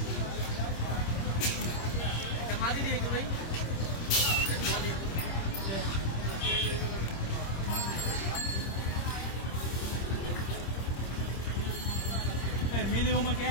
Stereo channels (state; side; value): late; right; 26 ms